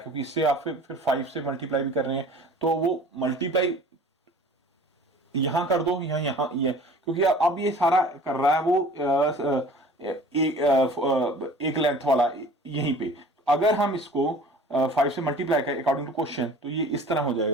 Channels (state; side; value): normal; both; correlation 0.46